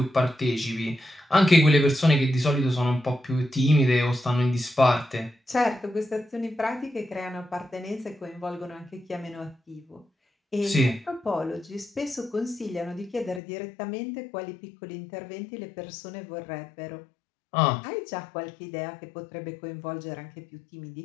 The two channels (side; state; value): right; drops out; at 13.4 s